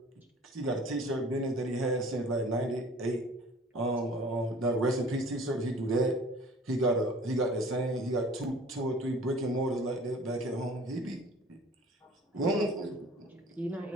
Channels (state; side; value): normal; both; correlation 0.48